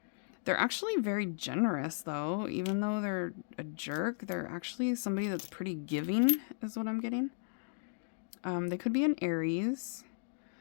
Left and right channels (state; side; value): silent; right; digital silence